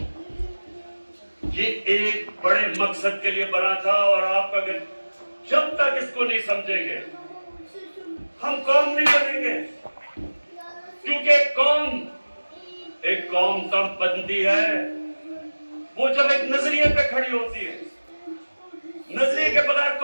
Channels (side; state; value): both; inverted; correlation -1.00